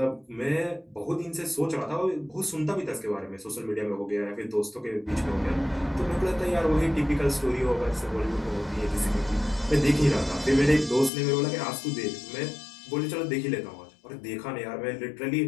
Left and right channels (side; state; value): right; drops out; at 11.1 s